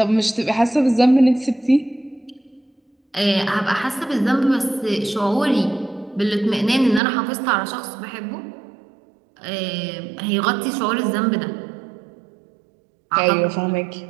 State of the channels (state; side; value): drops out; left; at 7.0 s